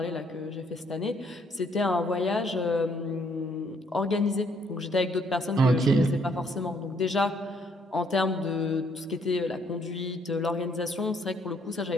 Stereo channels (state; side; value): normal; both; correlation 0.67